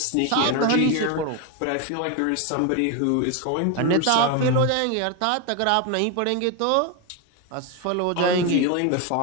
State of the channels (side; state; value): both; different; correlation 0.02